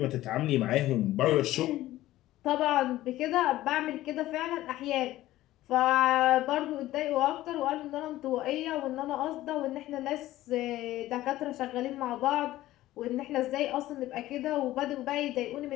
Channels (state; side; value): quieter; right; 15.5 dB